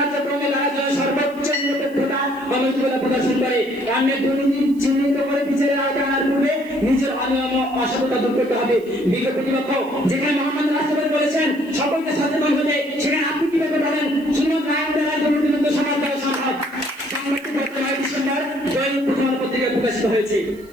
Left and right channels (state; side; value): noise; right; hiss, 27 dB below the sound